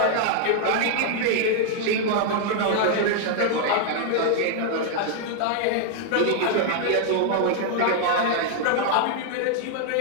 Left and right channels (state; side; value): different; both; correlation 0.00